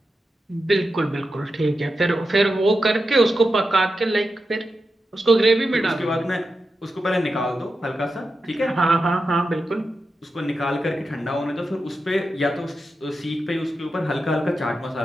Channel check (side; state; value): both; normal; correlation 0.89